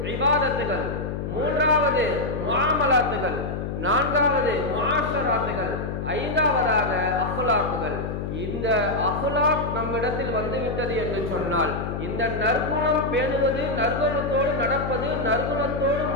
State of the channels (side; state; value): left; noise; hum, 4 dB below the sound